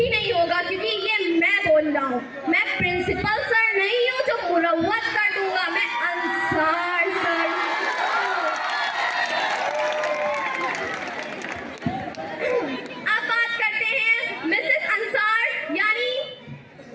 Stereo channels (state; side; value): identical; both; correlation 1.00